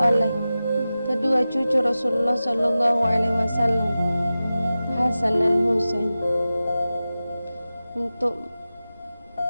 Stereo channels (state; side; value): inverted; both; correlation -0.94